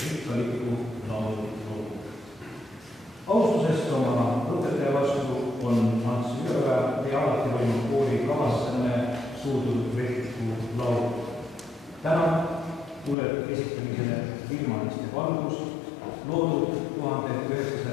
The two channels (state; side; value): drops out; right; at 13.2 s